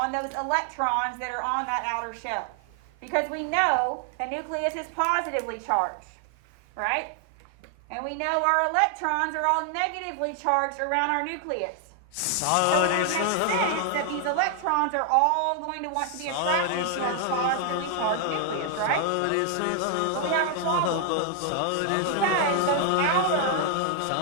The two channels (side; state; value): both; different; correlation 0.00